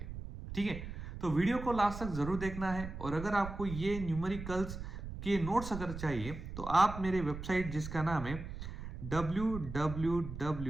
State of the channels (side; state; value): right; noise; rumble, 8 dB below the sound